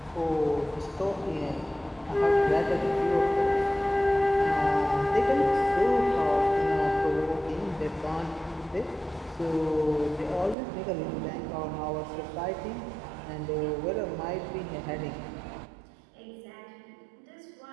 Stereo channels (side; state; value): left; drops out; at 10.6 s